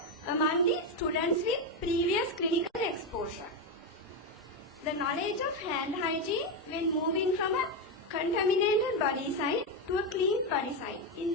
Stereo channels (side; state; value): both; normal; correlation 0.09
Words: among the students with previous clinical exposure. The knowledge of hand hygiene when moving from a contaminated body site to a clean body site in